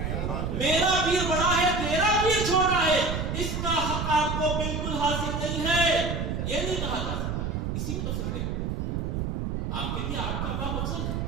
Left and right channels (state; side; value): noise; right; rumble, 2 dB below the sound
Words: میرا پیر بڑا ہے تیرا پیر چھوٹا ہے، اس کا حق آپ کو بالکل حاصل نہیں ہے. یہ نہیں کہا جا سکتا. اسی میں تو فکر ہے، آپ کے لیے آپ کا باپ افضل ہے،